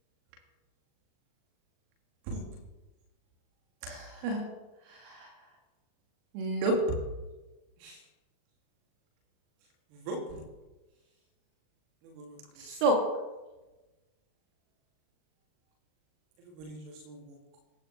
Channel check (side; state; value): left; late; 39 ms